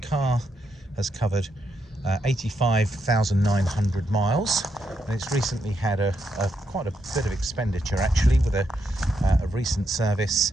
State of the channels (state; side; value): normal; both; correlation 0.80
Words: car has covered 85,900 miles, and it's recently had quite a bit of expenditure actually with a recent service.